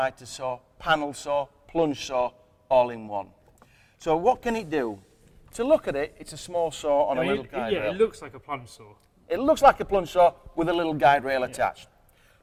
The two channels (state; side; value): identical; both; correlation 1.00